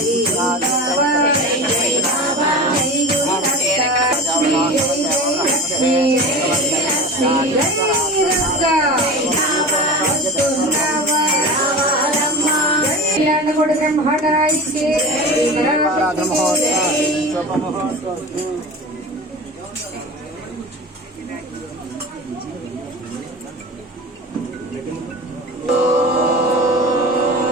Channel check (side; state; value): both; normal; correlation 0.32